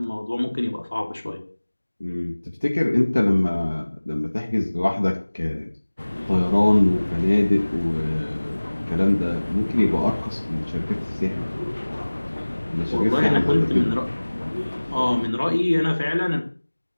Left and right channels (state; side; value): inverted; both; correlation -1.00